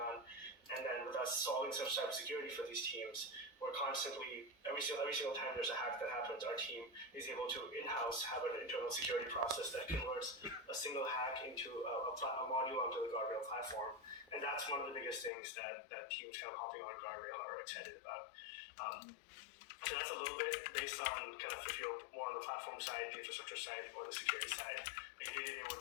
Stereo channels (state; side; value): drops out; right; at 15.3 s